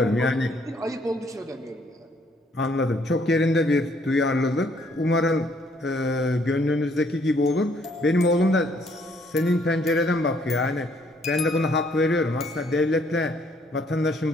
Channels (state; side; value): normal; both; correlation 0.66